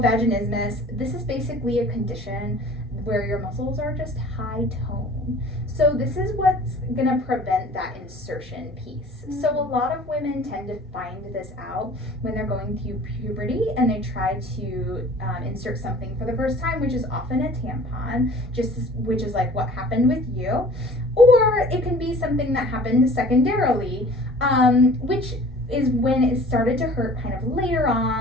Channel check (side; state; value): both; normal; correlation 0.47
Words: vaginismus, this is basically a condition where your muscles are just high tone. So this is what's gonna prevent that insertion piece. So a lot of women tend to find this out when they're going through puberty and they try to insert something for the first time, which is often a tampon, which is like what happened with you. Or it can be something that happened secondarily, which is when it started to hurt kind of later